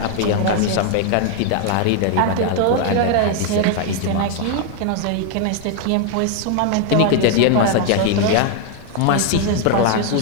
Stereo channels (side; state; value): both; different; correlation 0.00